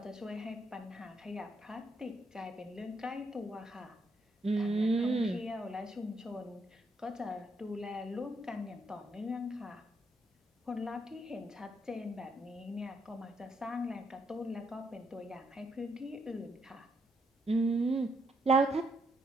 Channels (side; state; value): both; normal; correlation 0.75